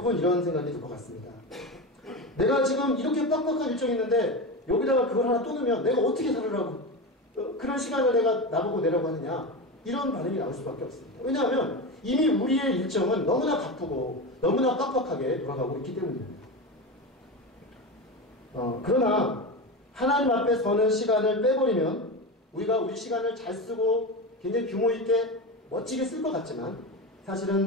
이런 생각이 들 것 같습니다. 내가 지금 이렇게 빡빡한 일정이 있는데 여기다가 그걸 하나 또 넣으면 내가 어떻게 살으라고 그런 시간을 내가 나보고 내라고 하느냐, 이런 반응이 나올 수밖에 없습니다. 왜냐하면 이미 우리의 일정은 너무나 바쁘고 너무나 빡빡하게 돌아가고 있기 때문입니다. 그러나 하나님 앞에 서는 시간을 빼버리면 우리가 우리 시간을 잘 쓰고 굉장히 규모 있게 멋지게 쓸 것 같지만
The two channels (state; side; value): normal; both; correlation 0.22